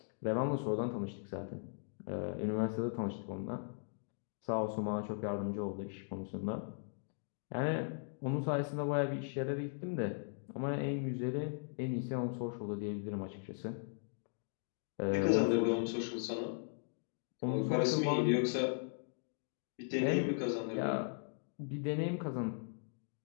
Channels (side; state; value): right; silent; digital silence